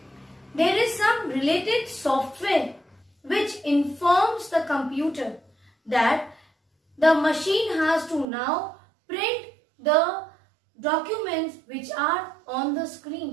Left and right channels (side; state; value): left; drops out; at 8.2 s